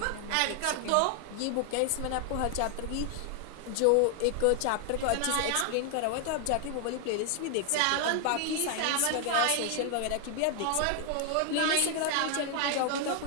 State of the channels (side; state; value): both; different; correlation 0.00